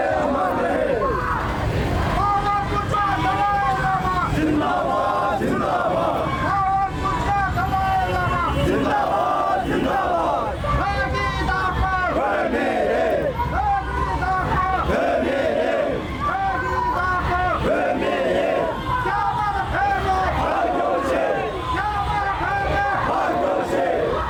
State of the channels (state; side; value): identical; both; correlation 1.00